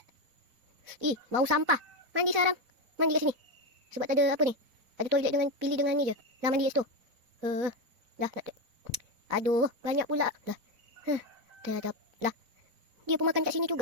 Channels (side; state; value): left; late; 4.1 ms